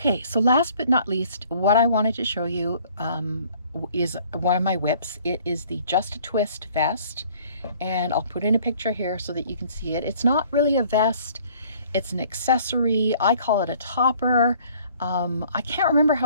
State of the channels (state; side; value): inverted; both; correlation -0.56